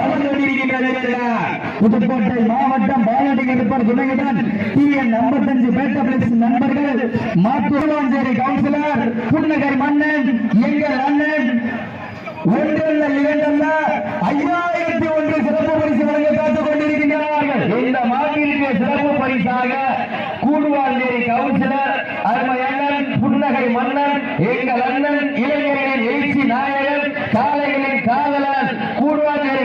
வந்து கொண்டிருக்கின்றன. புதுக்கோட்டை மாவட்டம் பாலாட்டி கருப்பர் துணையுடன் TN 55 பேட்ட பிளஸ் நண்பர்கள் மாத்தூர்வாஞ்சேரி கவுன்சிலர் புன்னகர் மன்னன் எங்கள் அண்ணன் ஒன்றல்ல இரண்டல்ல 5001 சிறப்பு பரிசு வழங்க காத்துக் கொண்டிருக்கின்றார்கள். இந்த மாநில சிறப்பு பரிசாக கூடுவாஞ்சேரி கவுன்சிலர் அருமை அண்ணன் புன்னகை மன்னன் எங்கள் அண்ணன் இளைஞர்களின் எழுச்சி நாயகன் காளைகளின் காதலன் கூடுவாஞ்சேரி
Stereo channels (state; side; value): identical; both; correlation 1.00